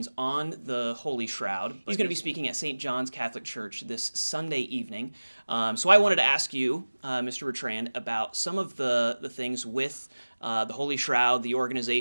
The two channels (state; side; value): inverted; both; correlation -1.00